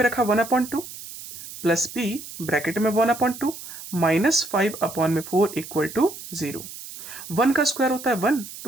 रखा 1/2 प्लस p ब्रैकेट में 1/2 माइनस 5/4 = 0। 1 का स्क्वायर होता है 1,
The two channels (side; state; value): right; noise; hiss, 13 dB below the sound